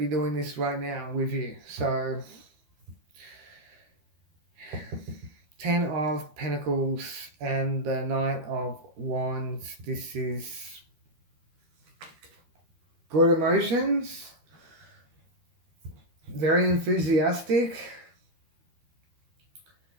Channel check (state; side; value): late; left; 13 ms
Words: doing this right now with you? So 10 of Pentacles and the Knight of Wands. This is good emotions, very enthusiastic.